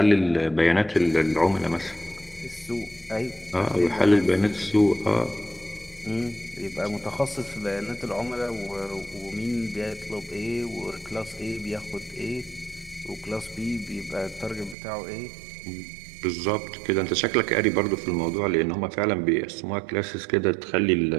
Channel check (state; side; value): drops out; left; at 14.8 s